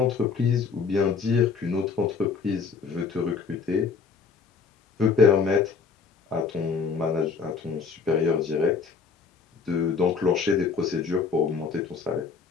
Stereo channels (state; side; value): quieter; right; 5.4 dB